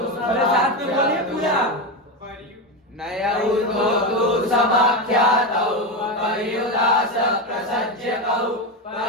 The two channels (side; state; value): both; normal; correlation 0.14